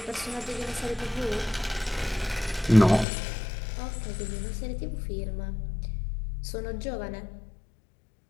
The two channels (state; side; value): drops out; right; at 3.1 s